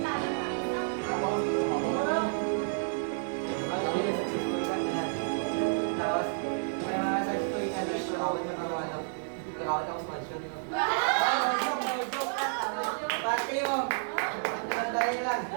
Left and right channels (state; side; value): silent; left; digital silence